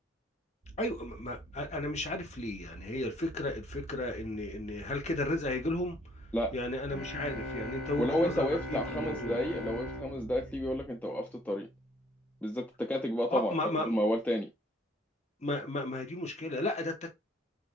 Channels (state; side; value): normal; both; correlation 0.62